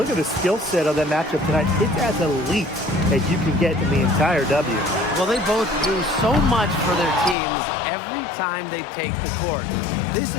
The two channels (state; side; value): drops out; right; at 7.4 s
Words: at the skill set of that matchup tonight. It's as elite as you can get in the entire W. Well, they both do so much for their teams every time they take the court. This